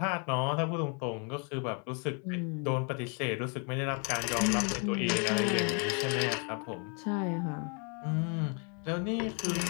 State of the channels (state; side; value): quieter; right; 37.5 dB